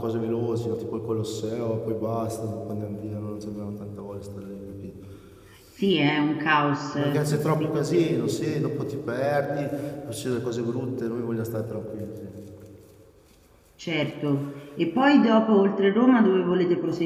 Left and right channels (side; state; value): both; identical; correlation 1.00